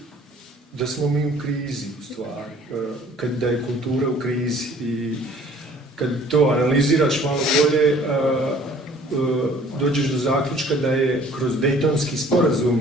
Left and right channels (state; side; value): normal; both; correlation 0.53